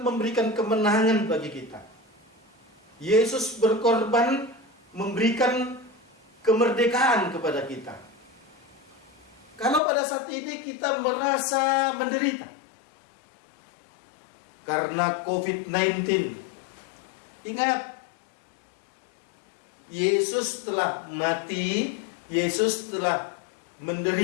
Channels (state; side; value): drops out; right; at 9.8 s